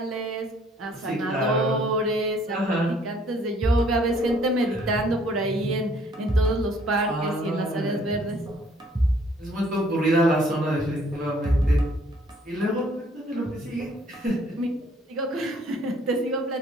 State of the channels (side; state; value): both; normal; correlation 0.61